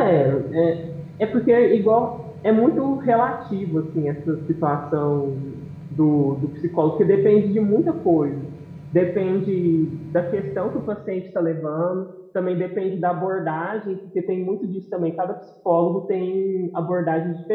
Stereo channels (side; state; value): both; identical; correlation 1.00